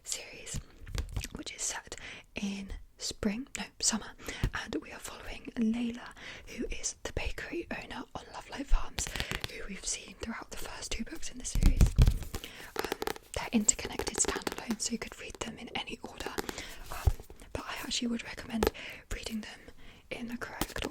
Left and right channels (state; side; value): identical; both; correlation 1.00